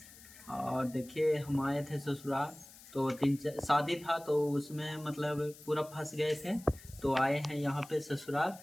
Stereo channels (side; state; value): left; noise; hiss, 20 dB below the sound